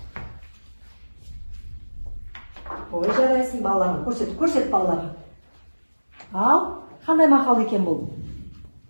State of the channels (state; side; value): inverted; both; correlation -1.00